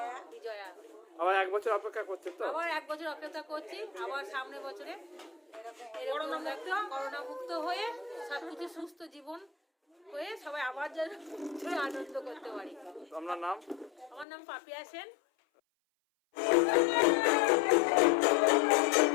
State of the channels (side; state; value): right; drops out; at 14.2 s